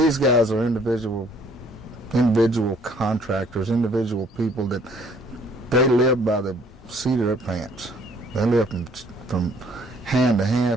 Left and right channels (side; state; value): both; normal; correlation 0.60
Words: guys are individual contractors, individual people that they live by the seat of their pants. They live from hand to